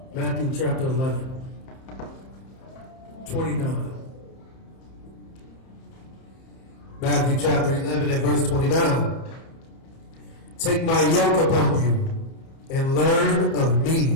Matthew chapter 11, 29. Matthew chapter 11 and verse 29. Take my yoke upon you and learn of me.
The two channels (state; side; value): late; right; 30 ms